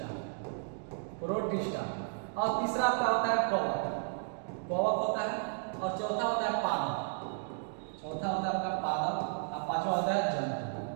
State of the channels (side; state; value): left; silent; digital silence